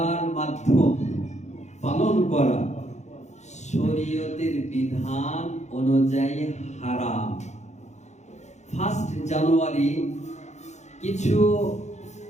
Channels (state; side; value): late; right; 0.33 ms